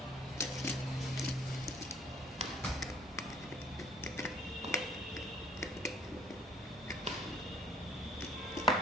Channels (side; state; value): both; normal; correlation 0.57